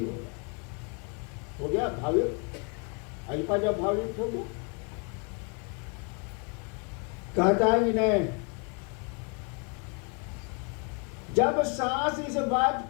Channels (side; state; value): right; quieter; 36.0 dB